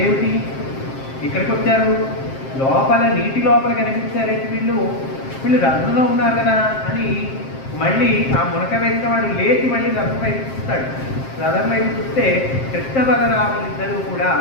ఇక్కడికి వచ్చారు, లోపల నీటి లోపల కనిపించారైతే వీళ్ళు రథంలో ఉన్నారు కదా అని మళ్ళీ ఆ మునక వేసిన వాడు లేచి మళ్ళీ రథం వైపు చూస్తాడు. రథం వైపు చూస్తే కృష్ణ బలరాములు ఇద్దరు కూడా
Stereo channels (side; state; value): right; late; 7.5 ms